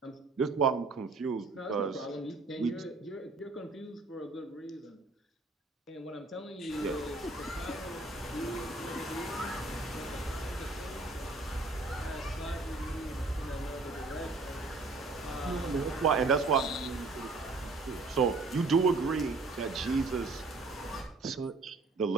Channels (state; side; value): quieter; left; 3.5 dB